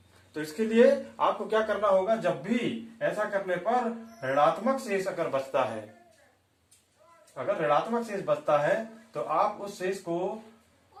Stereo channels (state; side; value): identical; both; correlation 1.00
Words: तो इसके लिए आपको क्या करना होगा? जब भी ऐसा करने पर ऋणात्मक शेष अगर बचता है, अगर ऋणात्मक शेष बचता है तो आप उस शेष को